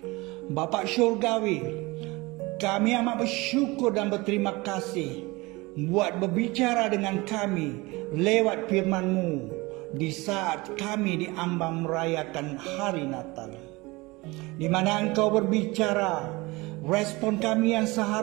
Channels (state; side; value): quieter; left; 23.1 dB